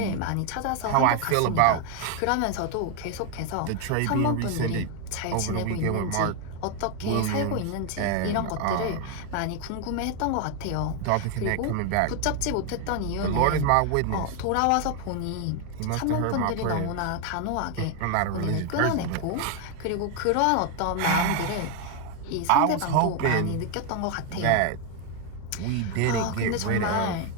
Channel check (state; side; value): different; both; correlation 0.01